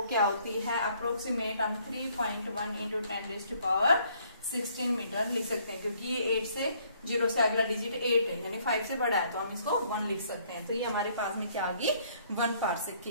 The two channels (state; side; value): inverted; both; correlation -0.64